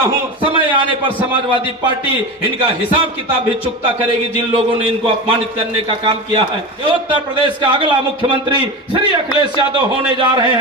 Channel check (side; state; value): both; normal; correlation 0.25